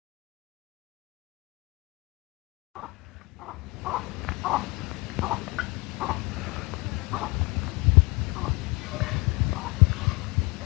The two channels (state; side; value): quieter; right; 25.3 dB